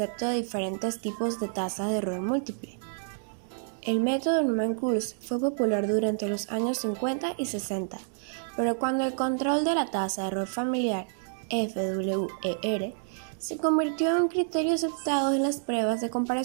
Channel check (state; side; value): silent; left; digital silence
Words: de diferentes tipos de tasa de error múltiple. El método Newman-Coulson fue popular durante los años 50 y 60, pero cuando el control de la tasa de error familiar, FWER, se convirtió en un criterio aceptado en las pruebas de